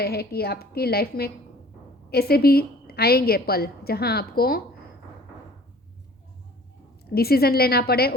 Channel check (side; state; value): both; normal; correlation 0.50